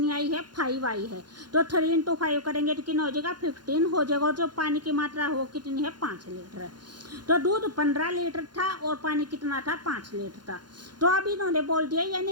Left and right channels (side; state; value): left; late; 0.71 ms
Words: आई है, 5 आई है। तो 3 × 5 करेंगे तो कितना हो जाएगा, 15 हो जाएगा। और जो पानी की मात्रा है वो कितनी है, 5 लीटर है। तो दूध 15 लीटर था और पानी कितना था, 5 लीटर था। तो अब इन्होंने बोल दिया,